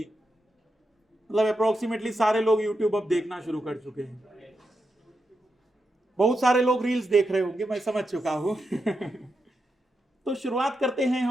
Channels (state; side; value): normal; both; correlation 0.86